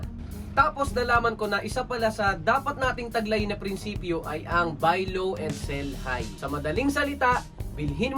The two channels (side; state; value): both; identical; correlation 1.00